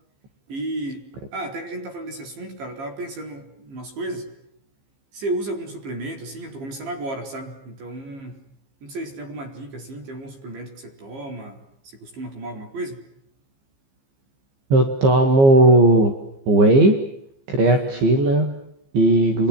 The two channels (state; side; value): late; left; 15 ms